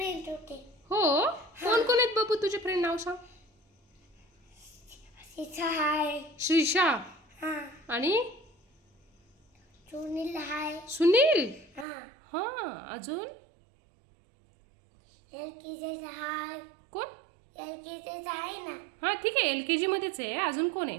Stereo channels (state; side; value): drops out; left; at 11.9 s